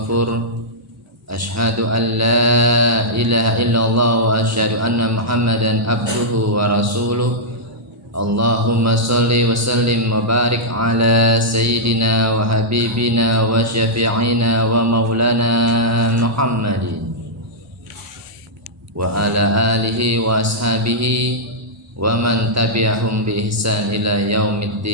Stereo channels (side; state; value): both; normal; correlation -0.09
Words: Asyhadu an la ilaha illallah wa asyhadu anna Muhammadan abduhu wa rasuluh. Allahumma salli wa sallim wa barik ala sayyidina wa habibina wa syafi'ina wa maulana Muhammadin wa ala alihi wa ashabihi wa man tabi'ahum bi ihsan ila